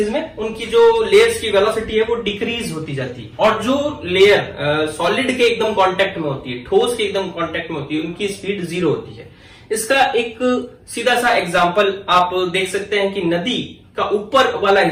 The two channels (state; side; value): identical; both; correlation 1.00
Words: में उनकी जो लेयर्स की वेलोसिटी है वो डिक्रीज होती जाती है, और जो लेयर सॉलिड के एकदम कांटेक्ट में होती है, ठोस के एकदम कांटेक्ट में होती है, उनकी स्पीड 0 होती है। इसका एक सीधा सा एग्जांपल आप देख सकते हैं कि नदी का ऊपर वाला